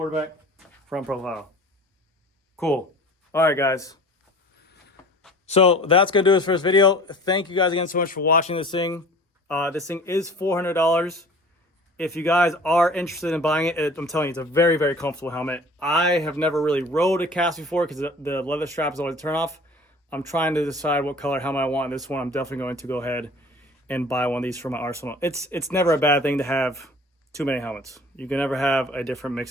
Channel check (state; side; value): normal; both; correlation 0.45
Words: Front profile. Cool. All right, guys. So that's going to do it for this video. Thank you guys again so much for watching this thing. This thing is $400. If you guys are interested in buying it, I'm telling you, it's a very, very comfortable helmet. I have never really rode a KASK before because the leather strap is always a turn off. I'm trying to decide what color helmet I want. And this one, I'm definitely going to go ahead and buy one of these for my arsenal. It's never a bad thing to have too many helmets. You can never have a different mix